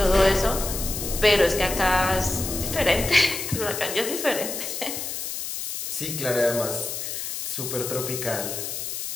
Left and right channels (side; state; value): left; noise; hiss, 5 dB below the sound